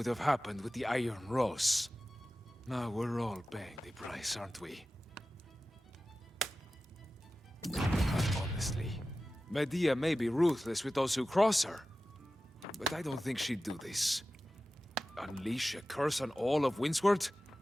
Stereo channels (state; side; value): normal; both; correlation 0.95